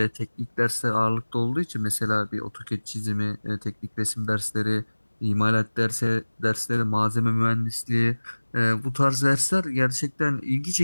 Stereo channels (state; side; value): inverted; both; correlation -1.00